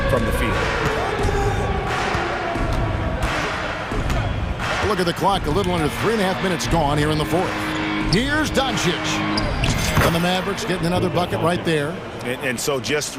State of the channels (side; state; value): both; identical; correlation 1.00